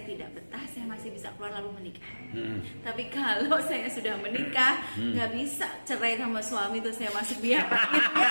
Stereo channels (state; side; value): inverted; both; correlation -1.00